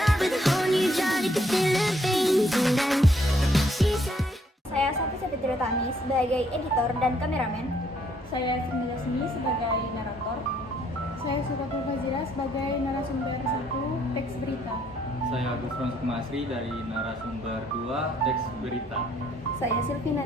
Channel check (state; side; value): normal; both; correlation 0.68